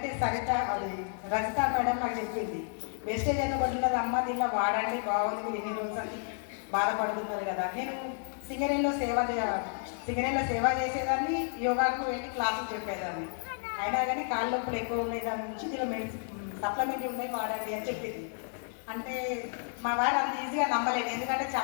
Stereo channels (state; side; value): silent; right; 57 dB below the other